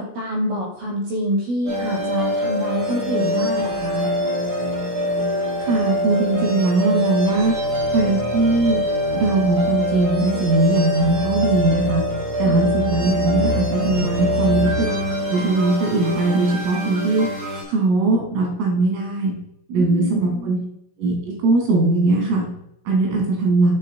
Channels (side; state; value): left; late; 17 ms